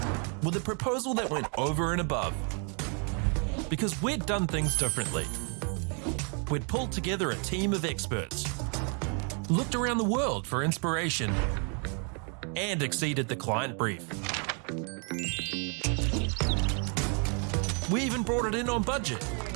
with a proposal that went over and above. Because we'd done things differently. We'd pulled together a team of experts, looked around the world for inspiration, and exceeded the client brief. We even brought it in on budget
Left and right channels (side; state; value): left; quieter; 39.1 dB